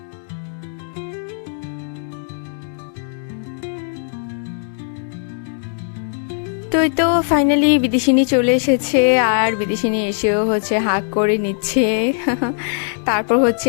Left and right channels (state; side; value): silent; right; digital silence